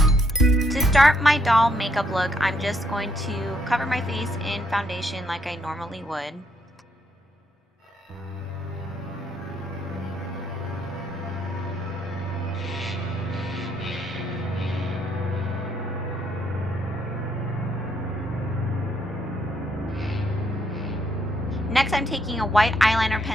To start my doll makeup look, I'm just going to cover my face in foundation like I normally would. Next, I'm taking a white eyeliner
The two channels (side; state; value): both; normal; correlation 0.73